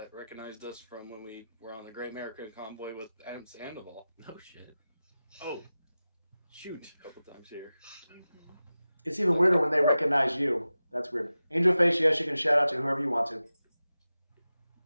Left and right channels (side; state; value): both; inverted; correlation -0.95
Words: recognized us from when we were on the Great American Convoy with Adam Sandoval. No shit. Oh, shoot! A couple times here. It's even weirder when they recognize you. That's weird. Angel Face, yes, you can shout out to whoever you want to.